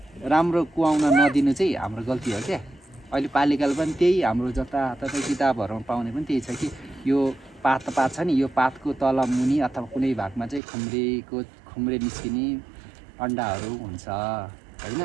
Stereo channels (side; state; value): left; drops out; at 10.6 s